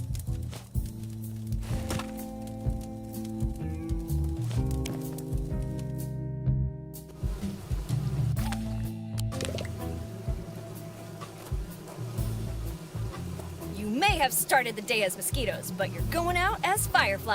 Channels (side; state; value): both; identical; correlation 1.00